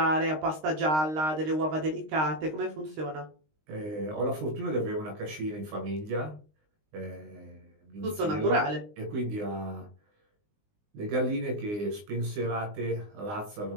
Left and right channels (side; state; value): left; late; 19 ms